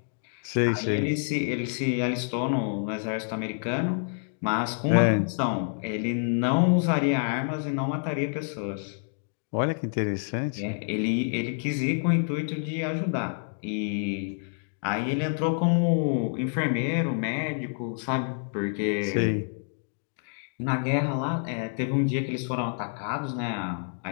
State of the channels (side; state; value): right; silent; 60 dB below the other